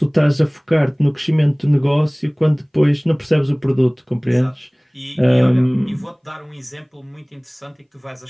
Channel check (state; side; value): identical; both; correlation 1.00